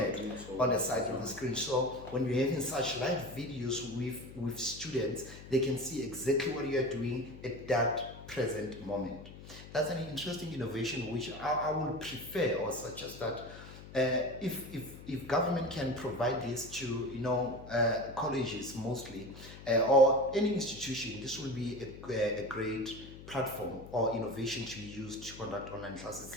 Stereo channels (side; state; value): left; noise; hum, 15 dB below the sound